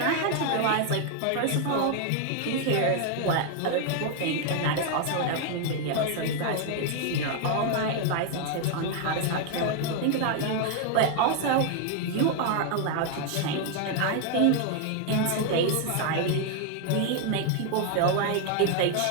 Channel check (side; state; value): both; different; correlation 0.01